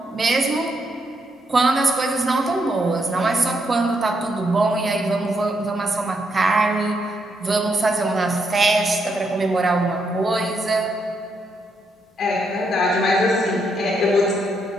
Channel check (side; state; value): both; normal; correlation 0.78